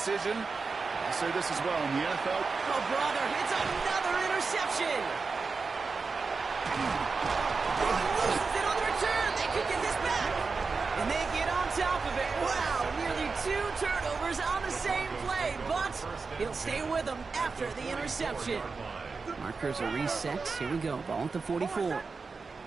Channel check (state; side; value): quieter; left; 4.5 dB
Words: I'll say this as well. In the NFL... Oh, brother, it's another interception! Loses it on the return. They could get this back. And they get on top of it. Wow, nearly 2 turnovers on the same play, but he'll stay with them after the interception. Markers are reset. Here we go. Ball at the 44. They're